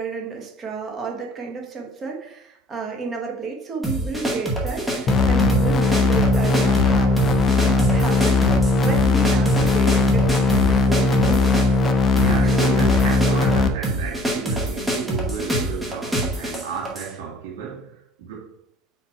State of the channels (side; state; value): both; normal; correlation 0.58